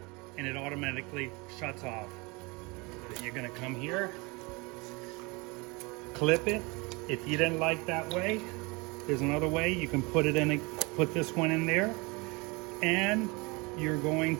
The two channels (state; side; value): quieter; left; 27.0 dB